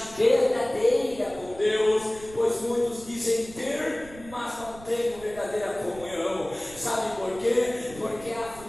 verdadeira com Deus, pois muitos dizem ter, mas não têm verdadeira comunhão. Sabe por quê? Porque a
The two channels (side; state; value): right; noise; rumble, 18 dB below the sound